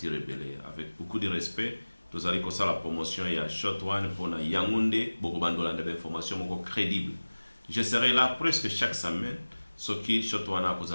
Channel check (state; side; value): inverted; both; correlation -1.00